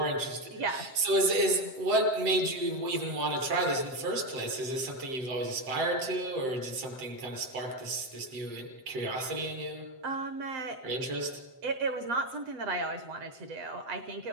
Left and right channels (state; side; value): late; left; 7.7 ms